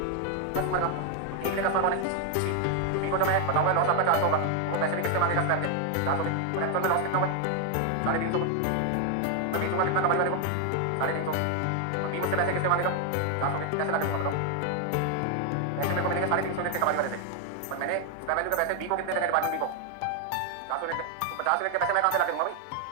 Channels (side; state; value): both; different; correlation 0.01